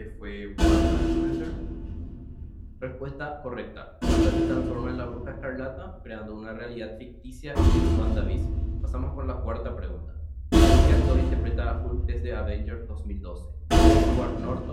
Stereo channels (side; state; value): both; identical; correlation 1.00